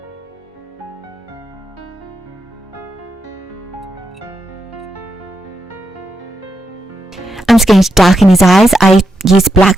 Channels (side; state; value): both; normal; correlation 0.84